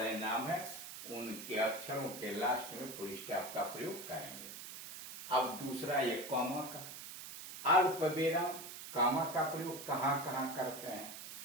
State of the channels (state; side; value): noise; right; hiss, 10 dB below the sound